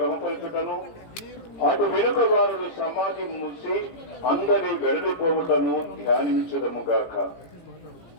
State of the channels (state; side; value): late; right; 17 ms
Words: అటు వెనుక వారు సమాధి మూసి అందరి వెడలిపోవుటను ధ్యానించదముగాక.